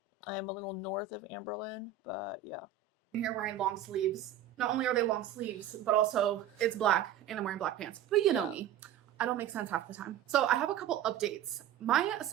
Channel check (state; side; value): quieter; left; 9.6 dB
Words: I am a little north of Amberlynn, but yeah. I'm here wearing long sleeves. Not only are they long sleeves, but also it's black and I'm wearing black pants. But you know me. I don't make sense half the time. So I have a couple updates. My